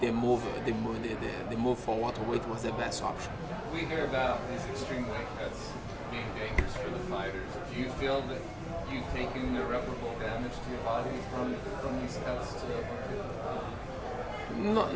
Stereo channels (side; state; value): both; identical; correlation 1.00